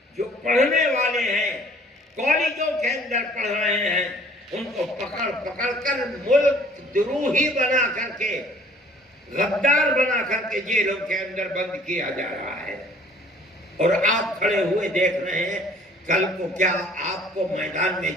جو پڑھنے والے ہیں، کالجوں کے اندر پڑھ رہے ہیں، ان کو پکڑ پکڑ کر ملک دروہی بنا کر کے، غدار بنا کر کے جیلوں کے اندر بند کیا جا رہا ہے۔ اور آپ کھڑے ہوئے دیکھ رہے ہیں، کل کو کیا آپ کو میدان میں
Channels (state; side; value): normal; both; correlation 0.54